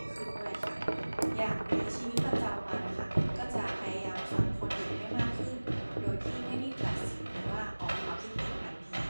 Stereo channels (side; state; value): both; inverted; correlation -1.00